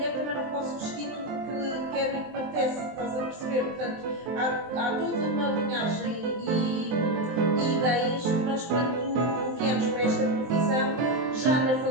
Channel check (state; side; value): late; left; 23 ms